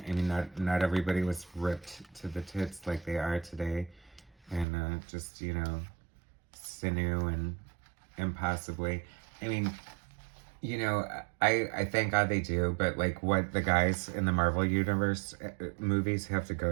I mean, not everybody was ripped to the tits like they are today, and just, you know, sinew and impossibly. I mean, you know, I thank God they do, but, like, what the guys in the Marvel Universe movies have to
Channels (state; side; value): drops out; left; at 4.7 s